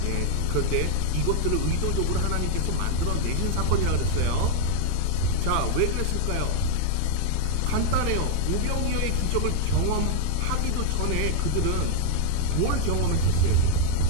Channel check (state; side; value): different; both; correlation 0.00